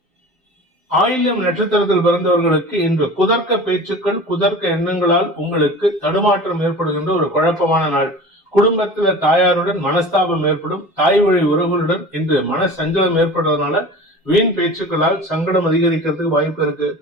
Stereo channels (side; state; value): both; normal; correlation 0.37